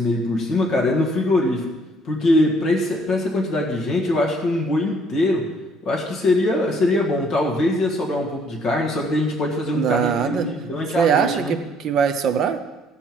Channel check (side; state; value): both; normal; correlation 0.63